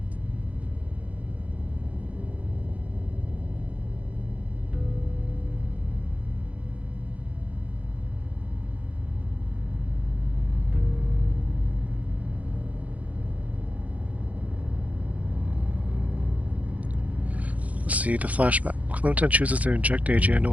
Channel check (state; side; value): late; left; 0.069 ms